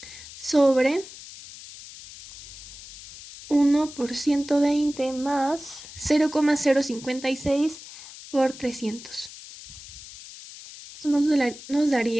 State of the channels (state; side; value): noise; left; hiss, 16 dB below the sound